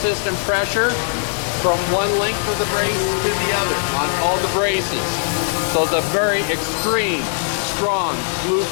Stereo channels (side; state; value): right; silent; 60 dB below the other